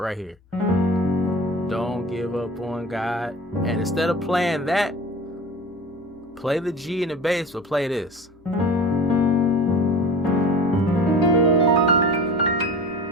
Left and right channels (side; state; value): both; normal; correlation 0.37